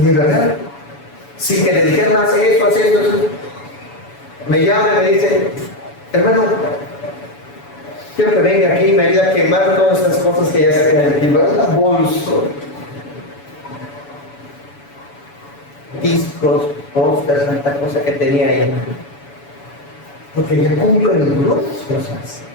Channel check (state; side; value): late; right; 7.0 ms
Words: verdad, sin que le dijeran más esto, me llama y me dice, hermano, quiero que venga aquí y me ayude a quemar todas estas cosas que ya saqué del equipo. Es una bolsa. Discos, pósters, tanta cosa que tenía ahí. Porque ya cumple muchas cosas.